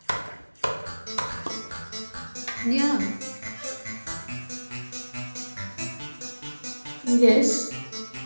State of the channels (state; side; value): inverted; both; correlation -1.00